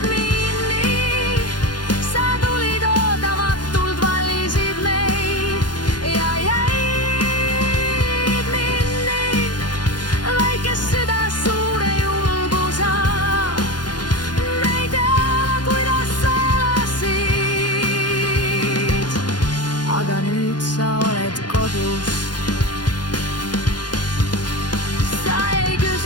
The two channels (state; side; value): late; right; 0.70 ms